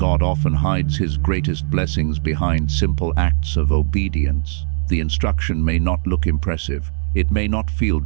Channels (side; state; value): left; silent; digital silence